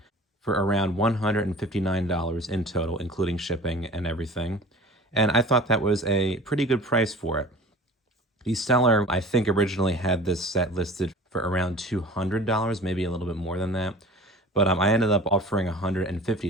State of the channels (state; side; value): normal; both; correlation 0.41